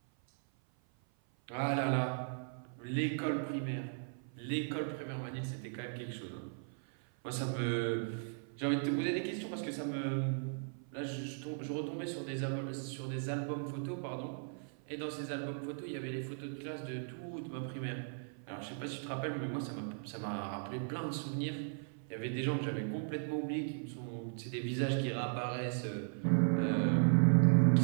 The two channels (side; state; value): left; silent; 53 dB below the other